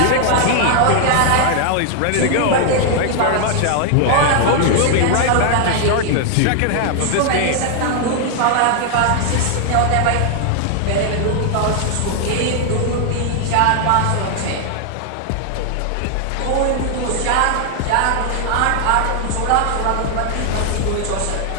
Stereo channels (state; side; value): different; both; correlation 0.00